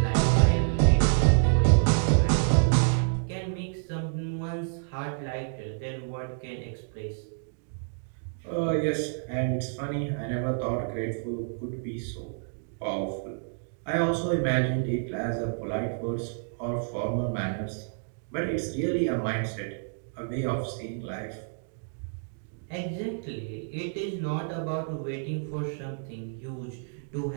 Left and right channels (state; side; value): silent; left; digital silence